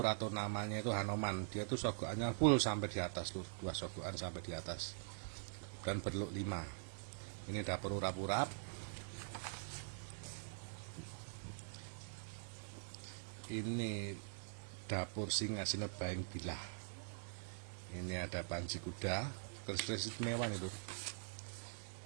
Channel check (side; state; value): left; silent; digital silence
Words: atau namanya itu Hanoman. Dia tuh sogokannya full sampai di atas lur, 2 sogokan sampai di atas, dan berlok 5. Ini dapur urap-urap. Ini dapur Singa Sinebaing Bilah. Ini ada Panji Kuda, keris istimewa nih lur.